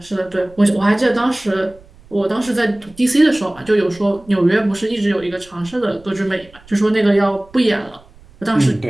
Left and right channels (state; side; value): noise; right; rumble, 25 dB below the sound